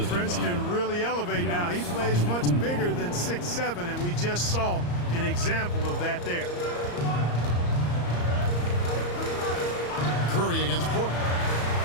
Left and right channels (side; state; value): right; late; 34 ms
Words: Prince can really elevate now. He plays much bigger than 6'7", and we just saw an example of that there. Curry against Porter.